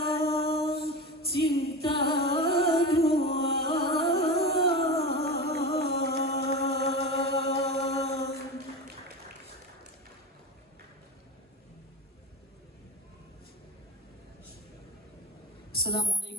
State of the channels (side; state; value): both; normal; correlation 0.27